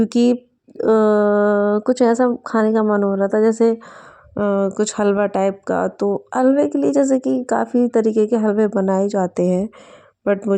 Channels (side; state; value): both; identical; correlation 1.00